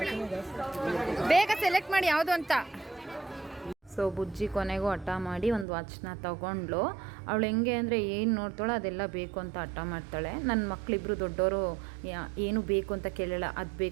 ಬೇಗ ಸೆಲೆಕ್ಟ್ ಮಾಡಿ ಯಾವುದು ಅಂತ. ಸೊ ಸೊ ಬುಜ್ಜಿ ಕೊನೆಗೂ ಹಠ ಮಾಡಿ ಒಂದು ವಾಚ್ನ ತೊಗೊಂಡ್ಳು. ಅವಳು ಹೆಂಗೆ ಅಂದರೆ ಏನು ನೋಡ್ತಾಳೋ ಅದೆಲ್ಲ ಬೇಕು ಅಂತ ಹಠ ಮಾಡ್ತಾಳೆ. ನನ್ನ ಮಕ್ಕಳಿಬ್ರು ದೊಡ್ಡವರು ಏನು ಬೇಕು ಅಂತ ಕೇಳಲ್ಲ, ಅದು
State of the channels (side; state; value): left; drops out; at 5.7 s